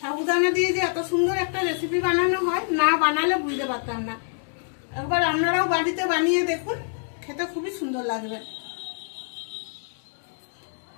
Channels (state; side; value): silent; right; 61 dB below the other